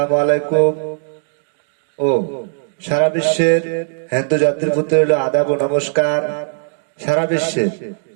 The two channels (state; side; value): silent; left; digital silence